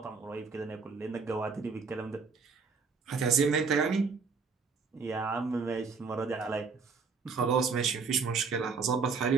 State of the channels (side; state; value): left; quieter; 5.1 dB